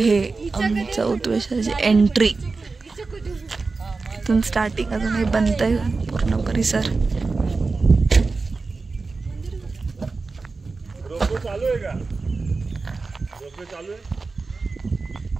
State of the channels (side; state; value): left; quieter; 4.0 dB